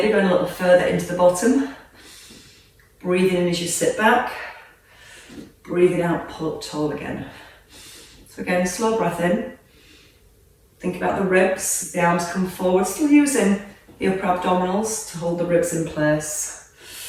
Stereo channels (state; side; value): identical; both; correlation 1.00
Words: going a little further into the bottom. Breathing in as you sit back. Breathing out, pull up tall again. So again, slow breath in. Think about the ribs as the arms come forward, still using the upper abdominals to hold the ribs in place.